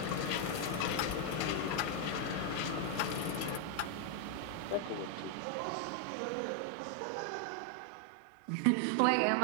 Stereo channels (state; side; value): different; both; correlation 0.00